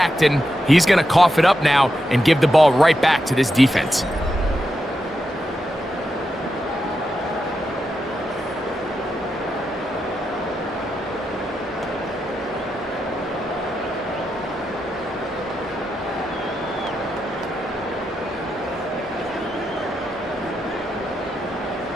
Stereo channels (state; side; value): normal; both; correlation 0.86